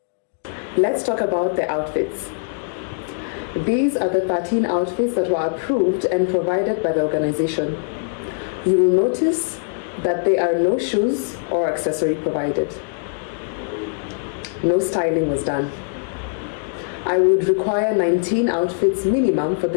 Let's talk about the outfits. These are the 13 outfits that were approved and provided by the organization. You will notice that there are no shoes or accessory provided. No styling was done. I would require 19 outfits minimum for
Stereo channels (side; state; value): right; silent; digital silence